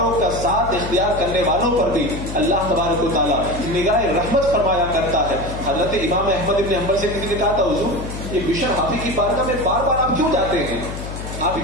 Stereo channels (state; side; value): noise; left; hum, 8 dB below the sound